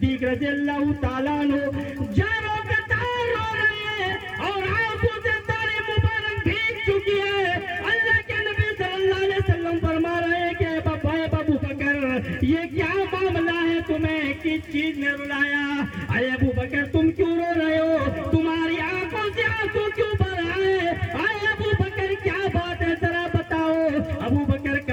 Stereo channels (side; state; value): both; identical; correlation 1.00